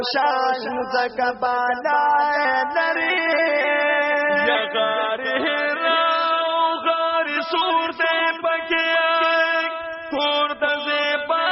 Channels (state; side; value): identical; both; correlation 1.00